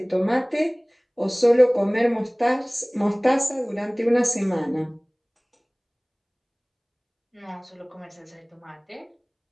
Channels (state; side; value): identical; both; correlation 1.00